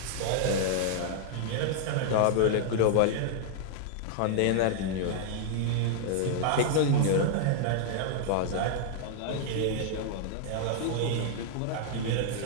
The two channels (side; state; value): both; different; correlation -0.01